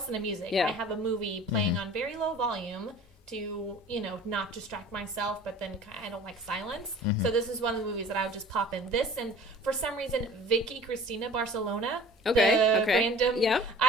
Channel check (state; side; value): normal; both; correlation 0.44